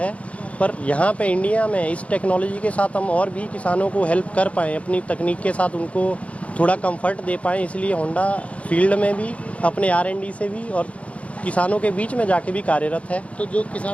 पर यहाँ पे इंडिया में इस टेक्नोलॉजी के साथ हम और भी किसानों को हेल्प कर पाएँ, अपनी तकनीक के साथ उनको थोड़ा कंफर्ट दे पाएँ, इसलिए होंडा फील्ड में भी अपने R&D से भी और किसानों के बीच में जाके भी कार्यरत है। तो जो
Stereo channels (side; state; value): right; late; 0.064 ms